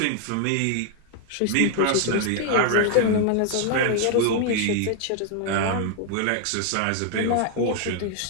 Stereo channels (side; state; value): both; different; correlation 0.00